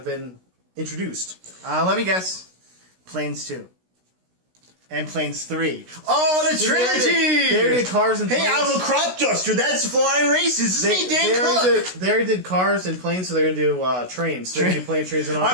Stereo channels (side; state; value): left; late; 16 ms